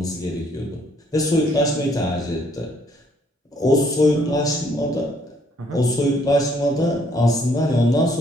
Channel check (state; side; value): normal; both; correlation 0.66